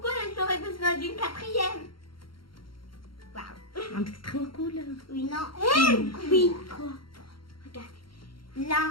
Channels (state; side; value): late; right; 0.73 ms